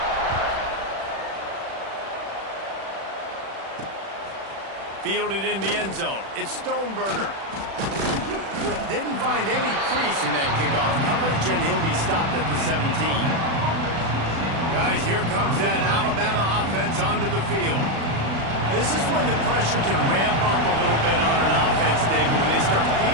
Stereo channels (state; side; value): late; left; 36 ms